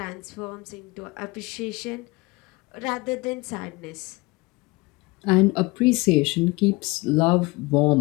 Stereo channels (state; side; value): quieter; right; 24.1 dB